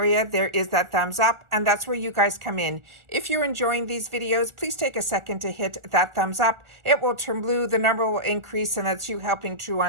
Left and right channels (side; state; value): left; late; 1.4 ms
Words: there is that thumbs up, and that's where you guys come in. If you're enjoying these videos, please take a second to hit that thumbs up. It will turn blue, the number will increase, and that's you helping True